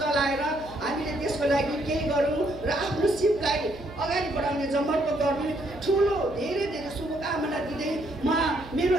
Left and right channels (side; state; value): right; noise; hum, 17 dB below the sound